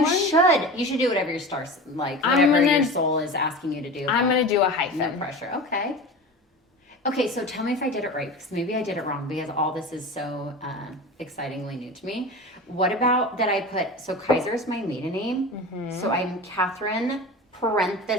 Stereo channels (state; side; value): normal; both; correlation 0.31